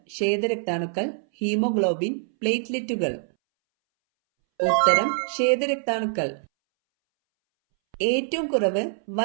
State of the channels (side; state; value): left; silent; 62 dB below the other